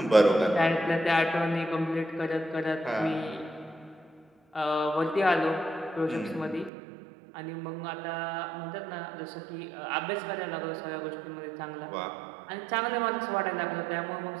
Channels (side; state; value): left; drops out; at 6.7 s